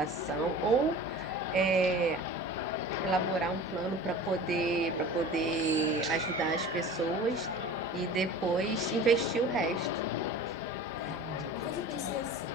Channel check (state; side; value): normal; both; correlation 0.39